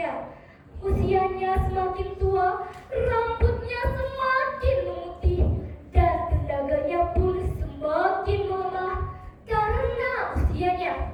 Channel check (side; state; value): both; identical; correlation 1.00